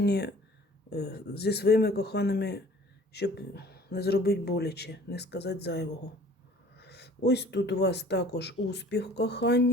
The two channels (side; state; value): both; normal; correlation 0.50